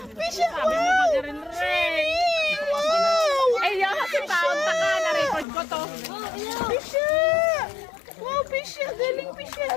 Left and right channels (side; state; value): right; drops out; at 5.5 s